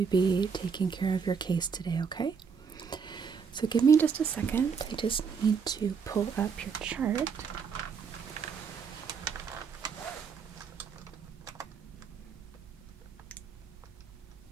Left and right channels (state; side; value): quieter; left; 6.1 dB